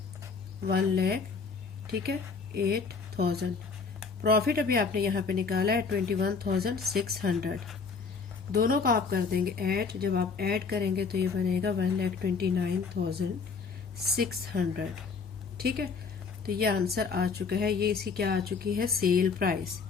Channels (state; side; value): quieter; right; 5.1 dB